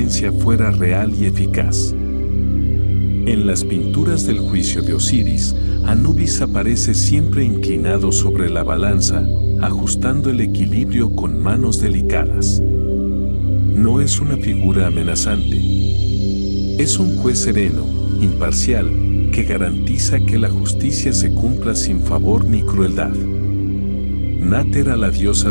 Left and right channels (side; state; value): both; inverted; correlation -1.00